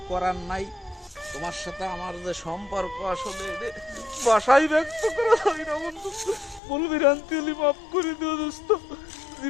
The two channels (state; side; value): drops out; right; at 6.6 s